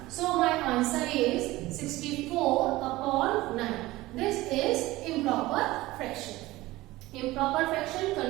So my answer is 64 upon 9. This is improper fraction. Improper fraction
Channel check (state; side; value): quieter; left; 18.6 dB